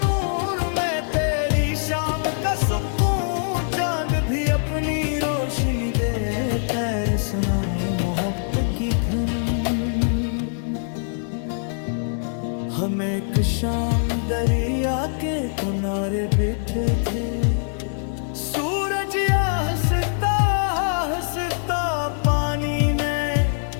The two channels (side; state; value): right; silent; digital silence